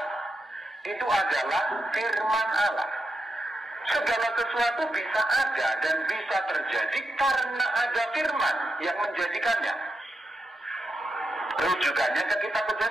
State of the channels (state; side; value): normal; both; correlation 0.86